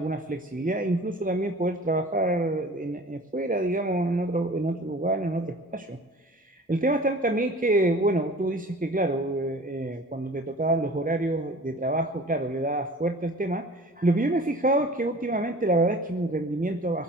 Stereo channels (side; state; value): both; normal; correlation 0.44